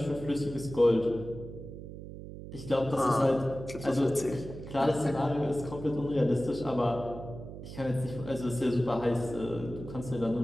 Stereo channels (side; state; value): right; noise; hum, 11 dB below the sound